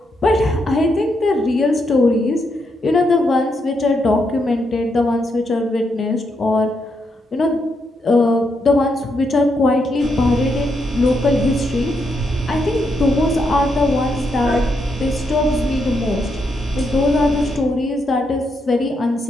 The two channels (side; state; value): both; normal; correlation 0.80